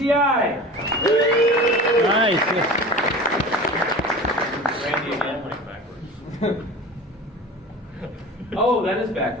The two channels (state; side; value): normal; both; correlation 0.36